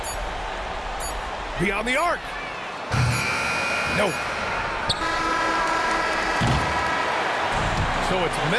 Beyond the arc. No. So it's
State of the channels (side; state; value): both; identical; correlation 1.00